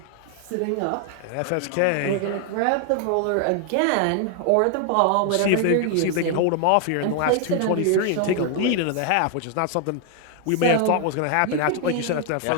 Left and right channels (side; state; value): both; different; correlation 0.00